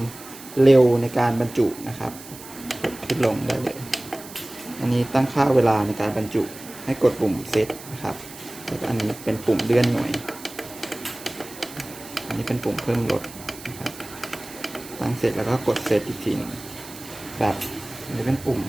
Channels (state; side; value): noise; right; hiss, 16 dB below the sound